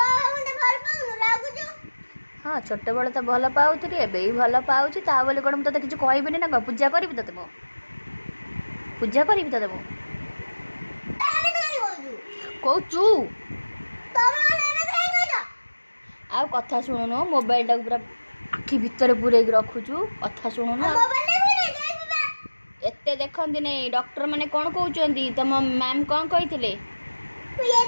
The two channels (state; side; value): inverted; both; correlation -1.00